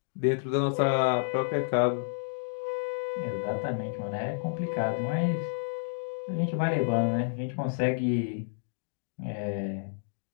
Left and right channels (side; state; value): right; silent; digital silence